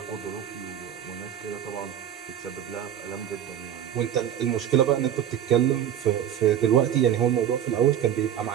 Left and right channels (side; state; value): left; quieter; 10.1 dB